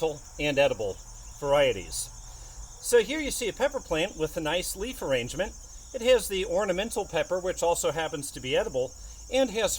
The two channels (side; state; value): both; identical; correlation 1.00